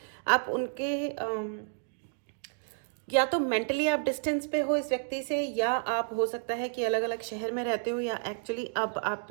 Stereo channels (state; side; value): silent; left; digital silence